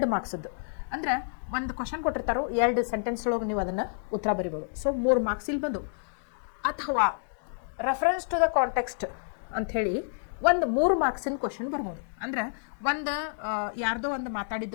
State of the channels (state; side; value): silent; right; digital silence